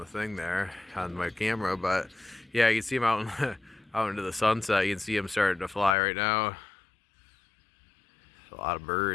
thing there on my camera, but yeah, you can see them out out into the sunset. You can see them starting to fly right now. A lot of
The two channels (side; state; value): right; drops out; at 6.0 s